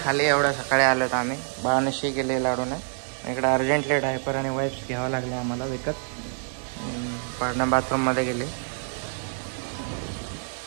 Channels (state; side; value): silent; left; digital silence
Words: खाली. एवढ्या सकाळी आलो तर आम्ही. बाळाने शी केले लाडूने. इकडे अर्जंटली डायपर आणि वाईप्स घ्यावं लागले आम्हाला विकत. पाडणा बाथरूममध्ये गेले.